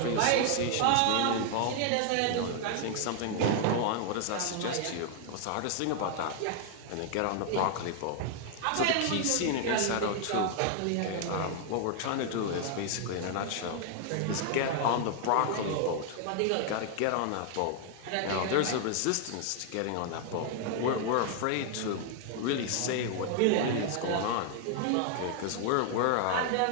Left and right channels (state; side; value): different; both; correlation 0.00